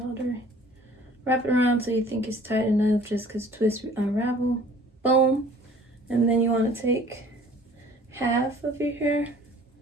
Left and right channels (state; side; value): normal; both; correlation 0.52